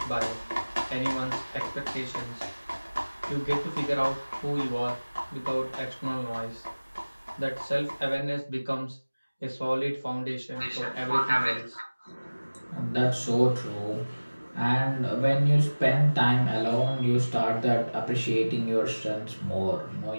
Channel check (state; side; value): inverted; both; correlation -1.00